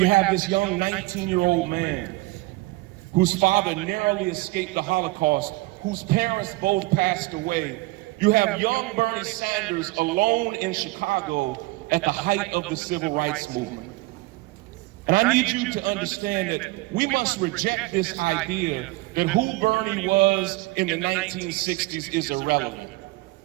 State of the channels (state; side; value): quieter; left; 21.9 dB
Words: have this young 19-year-old man whose father narrowly escaped the Holocaust, whose parents both passed away. You have young Bernie Sanders alone in Chicago at the height of the civil rights movement. And I need you to understand that we must reject this idea that who Bernie was in the 1960s is irrelevant.